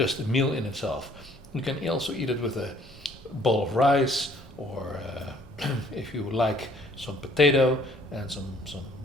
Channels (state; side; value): normal; both; correlation 0.59